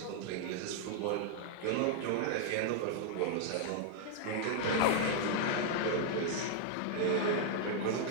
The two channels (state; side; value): different; both; correlation -0.01